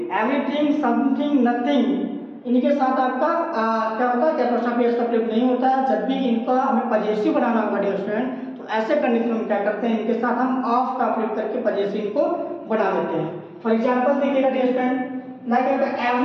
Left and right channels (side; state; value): both; identical; correlation 1.00